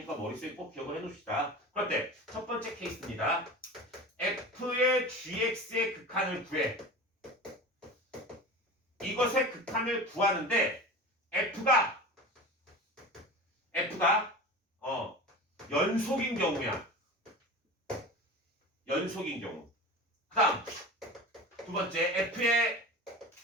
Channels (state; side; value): normal; both; correlation 0.33